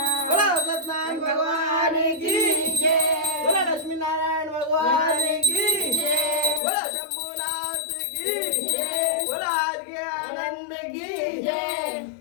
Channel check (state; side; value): drops out; right; at 6.6 s